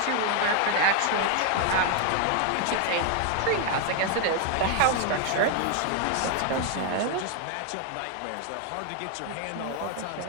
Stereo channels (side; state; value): both; different; correlation 0.00